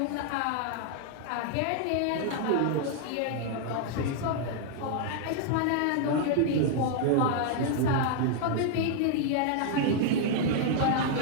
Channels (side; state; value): both; different; correlation 0.00